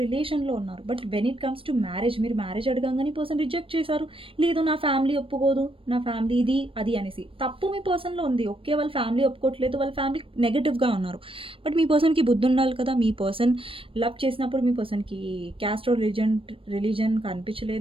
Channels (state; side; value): late; left; 0.26 ms